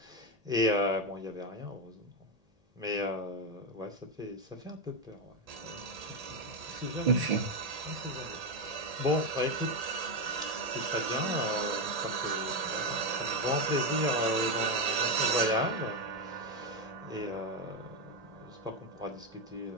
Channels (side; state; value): left; late; 1.8 ms